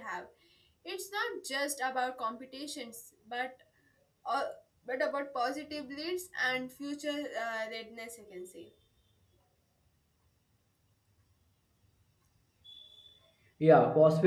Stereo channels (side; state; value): both; identical; correlation 1.00